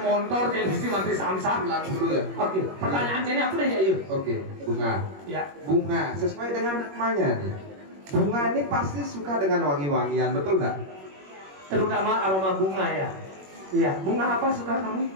motor jadi sih mati samsat. 90 ya. Oke, pertanyaan sini apa deh ya yuk? Oke, Bunga. Ya. Bunga sesuai dengan namanya nih. Bunga ini pasti suka dengan wangi-wangian, betul nggak? Terutama aroma bunga ya. Iya, bunga apa suka kamu?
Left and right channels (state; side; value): late; left; 21 ms